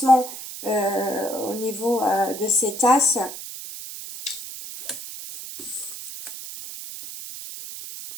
au niveau de cet as.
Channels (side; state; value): right; noise; hiss, 10 dB below the sound